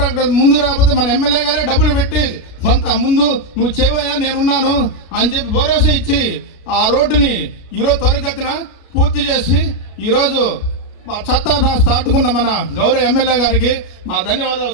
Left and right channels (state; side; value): late; right; 32 ms